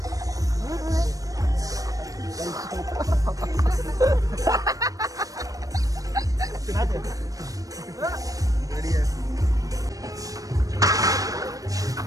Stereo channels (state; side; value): late; left; 0.17 ms